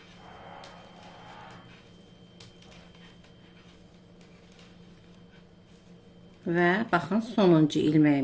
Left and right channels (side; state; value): both; identical; correlation 1.00